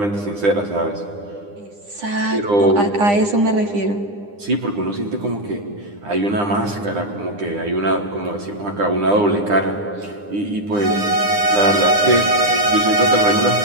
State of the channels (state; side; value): late; left; 9.9 ms